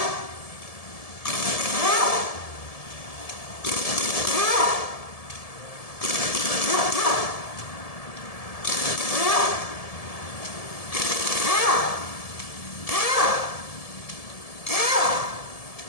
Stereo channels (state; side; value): late; right; 1.7 ms